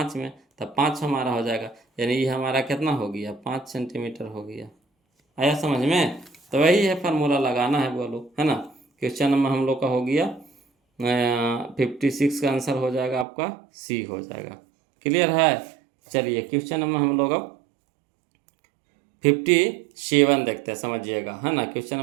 में, तो 5 हमारा हो जाएगा, यानी ये हमारा कितना हो गया 5 सेंटीमीटर हो गया। आया समझ में। तो वही है फार्मूला लगाना है बोलो, है ना। क्वेश्चन नंबर हम लोग का हो गया 56 का आंसर हो जाएगा आपका सी हो जाएगा। क्लियर है। चलिए क्वेश्चन नंबर हम लोग अब 57 देखते हैं, समझिएगा, है ना। क्वेश्चन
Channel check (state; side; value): drops out; left; at 13.2 s